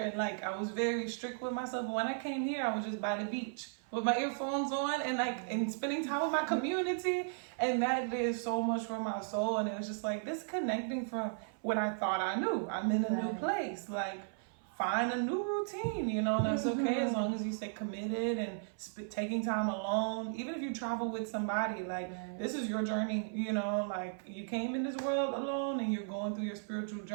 like I was very strict with myself. But when I came here, I was just by the beach with my earphones on and spending time with my community, and that did so much for my soul. And it was just like disconnecting from what I thought I knew. I'm in a new place, like find a new routine, and that's okay as long as you stay committed and taking time alone. Even if you travel with somebody, like this is your journey, like you came in this world alone and you're going through your spiritual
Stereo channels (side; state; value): left; silent; 54 dB below the other